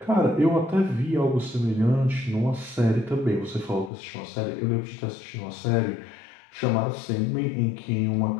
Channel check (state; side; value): drops out; right; at 3.9 s